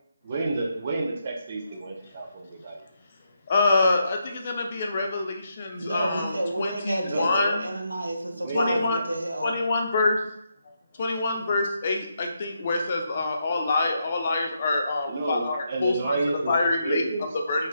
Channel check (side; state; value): both; inverted; correlation -0.81